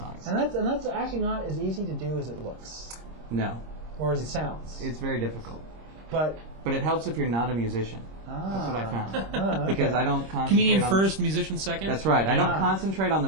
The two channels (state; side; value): late; left; 26 ms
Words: And that's actually not as easy to do as it looks. No. Or as it sounds. It's very difficult. But it helps if you're not a musician. That's what I found. Okay. Because I don't concentrate Comedian first, musician second? That's right. I don't concentrate on the